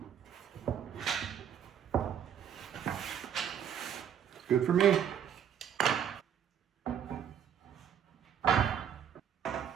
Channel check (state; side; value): quieter; left; 8.8 dB